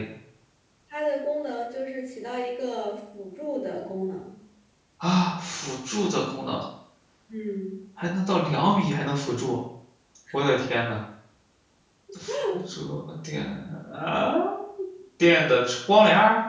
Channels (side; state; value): both; identical; correlation 1.00